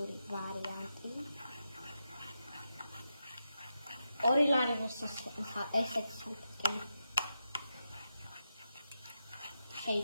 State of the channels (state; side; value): inverted; both; correlation -0.87